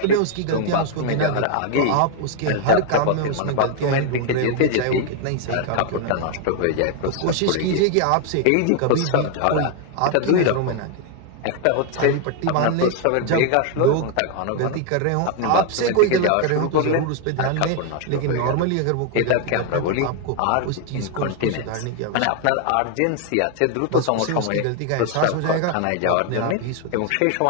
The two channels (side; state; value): both; different; correlation 0.00